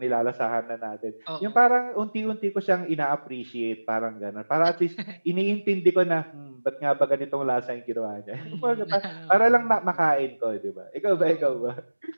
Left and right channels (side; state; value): both; inverted; correlation -1.00